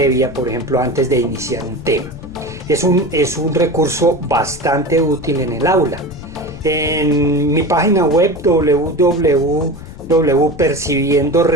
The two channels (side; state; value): left; noise; rumble, 15 dB below the sound